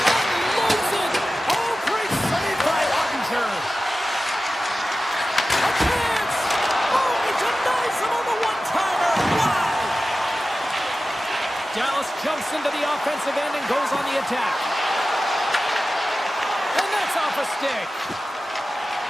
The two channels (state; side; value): normal; both; correlation 0.95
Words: it! Oh, great save by Ottinger. A chance! Oh, he denies him on the one-timer! Wow! Dallas jumps into the offensive end and goes on the attack. And that's off a stick.